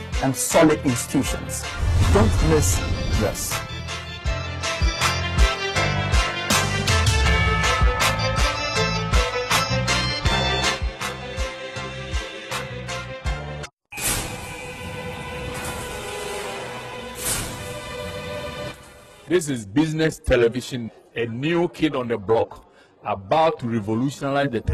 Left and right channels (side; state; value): both; identical; correlation 1.00